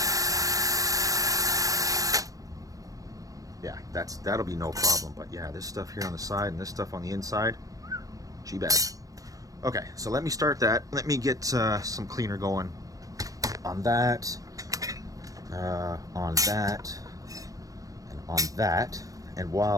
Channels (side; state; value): left; late; 0.16 ms